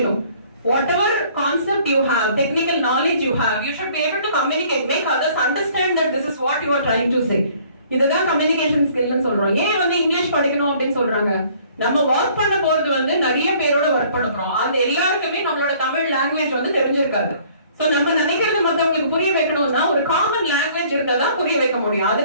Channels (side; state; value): both; inverted; correlation -0.57